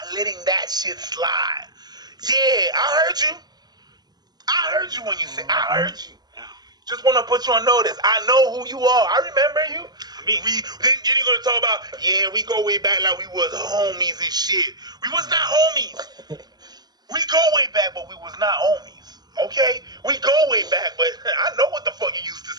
letting that shit slide. Yeah, I heard you. I heard you when you said, I heard you. Just want to put you on notice. I know who you are. I remember you. Then you're gonna talk about, yeah, we go way back like we was homies and shit. We was not homies. We go way back, but we was not homies. Okay? We go way back, but I know what the fuck you used to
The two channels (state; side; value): late; left; 0.19 ms